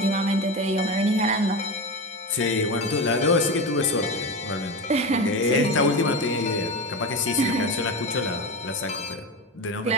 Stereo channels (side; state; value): both; normal; correlation 0.22